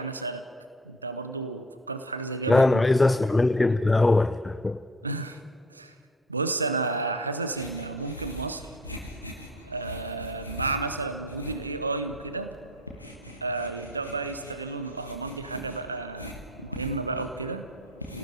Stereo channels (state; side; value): normal; both; correlation 0.48